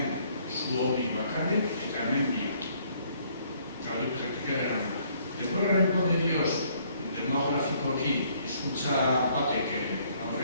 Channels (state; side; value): inverted; both; correlation -0.64